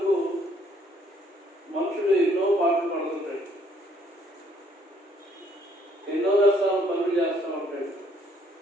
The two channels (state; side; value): normal; both; correlation 0.65